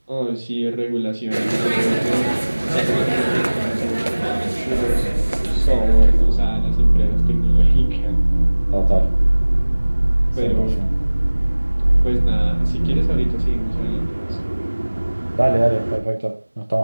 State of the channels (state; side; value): inverted; both; correlation -1.00